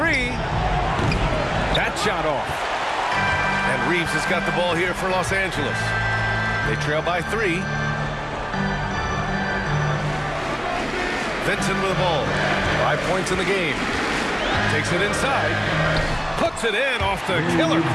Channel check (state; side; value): identical; both; correlation 1.00